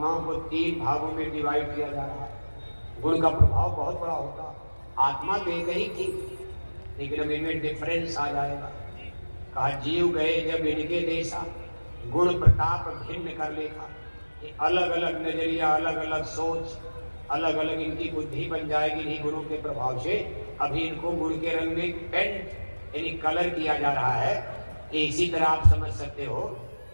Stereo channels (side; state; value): both; inverted; correlation -1.00